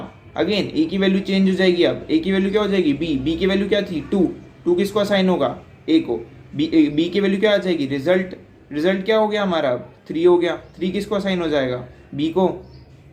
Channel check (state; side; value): identical; both; correlation 1.00